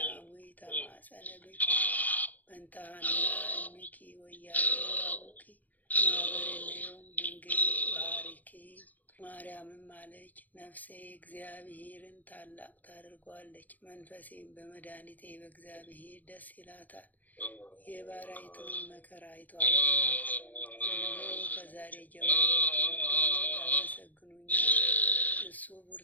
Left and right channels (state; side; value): late; right; 0.081 ms